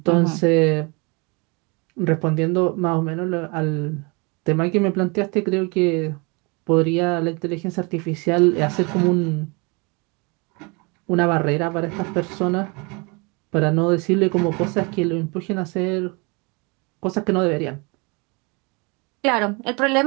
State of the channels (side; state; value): left; quieter; 29.7 dB